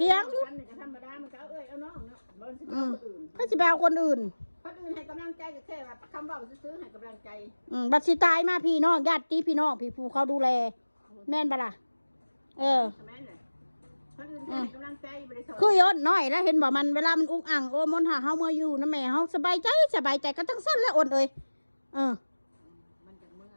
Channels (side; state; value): both; inverted; correlation -1.00